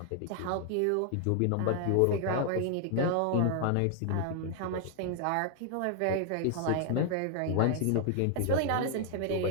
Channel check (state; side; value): different; both; correlation 0.00